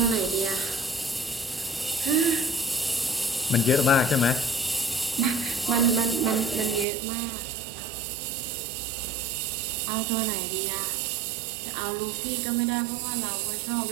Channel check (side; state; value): left; drops out; at 6.9 s